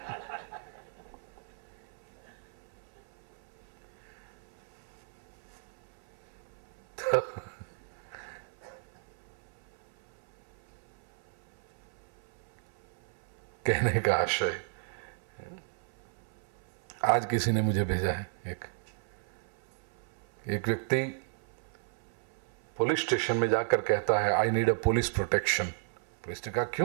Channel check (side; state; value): left; silent; 55 dB below the other